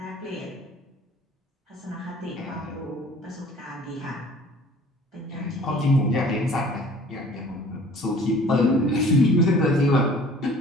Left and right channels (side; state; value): both; normal; correlation 0.50